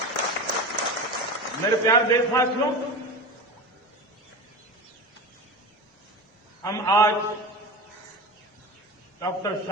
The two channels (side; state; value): both; normal; correlation 0.27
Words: मेरे प्यारे देशवासियों, हम आज डॉक्टर